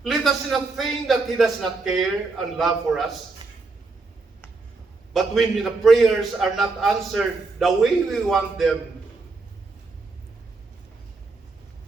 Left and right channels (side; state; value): left; quieter; 3.9 dB